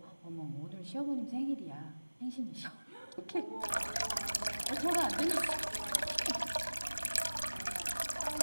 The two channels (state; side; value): inverted; both; correlation -1.00